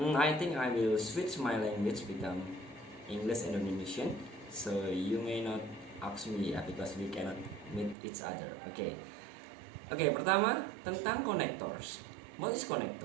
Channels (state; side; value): drops out; left; at 8.0 s